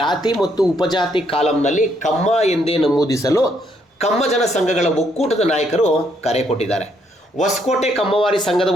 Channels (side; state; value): both; normal; correlation 0.72